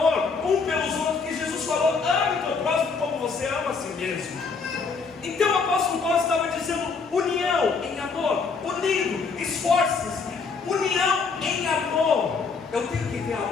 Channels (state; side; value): quieter; right; 4.9 dB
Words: um pelos outros, que Jesus falou: ame o teu próximo como você ama a si mesmo. Então o apóstolo Paulo estava dizendo: união em amor, unido, esforços, união em amor. Eu tenho que ter